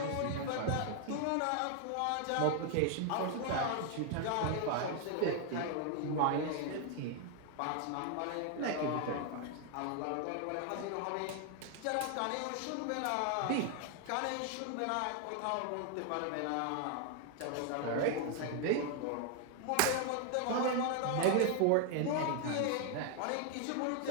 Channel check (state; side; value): different; both; correlation 0.00